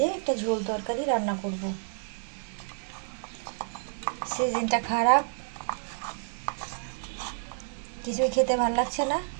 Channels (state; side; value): silent; left; digital silence